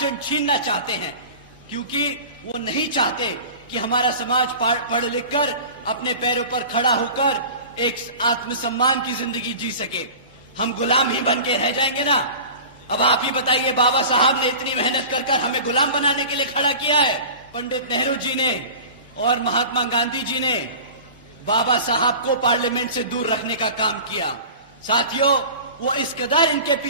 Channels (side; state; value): both; inverted; correlation -0.38